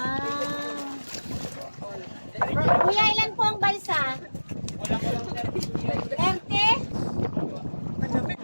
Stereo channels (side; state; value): both; inverted; correlation -1.00